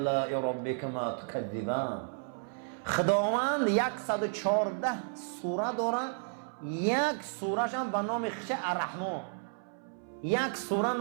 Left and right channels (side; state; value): left; silent; 56 dB below the other